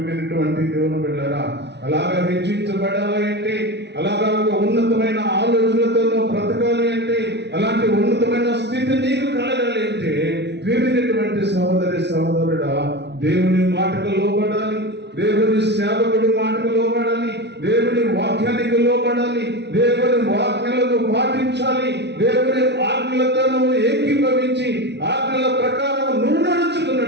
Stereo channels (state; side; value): late; left; 0.50 ms